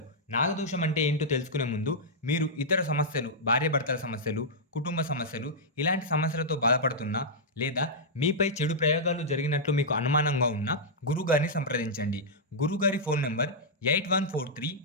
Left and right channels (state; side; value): normal; both; correlation -0.09